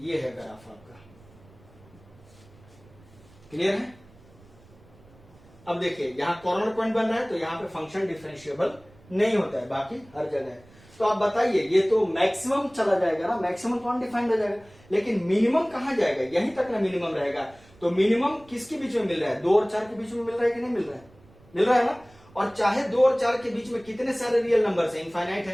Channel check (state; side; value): noise; right; rumble, 26 dB below the sound